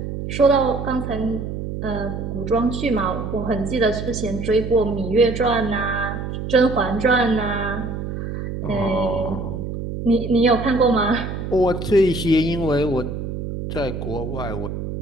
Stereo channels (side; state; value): right; noise; hum, 6 dB below the sound